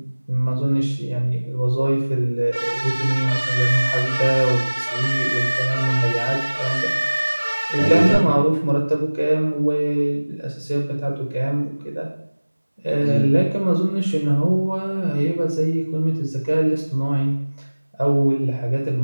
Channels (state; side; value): inverted; both; correlation -1.00